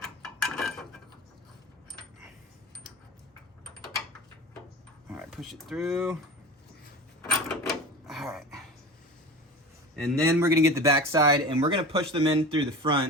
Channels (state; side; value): normal; both; correlation 0.33